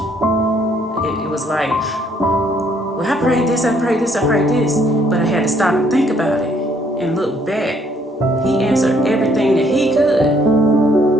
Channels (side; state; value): both; normal; correlation 0.66